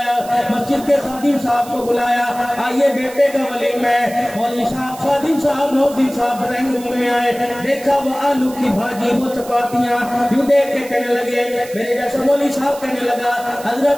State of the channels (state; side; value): noise; right; hiss, 17 dB below the sound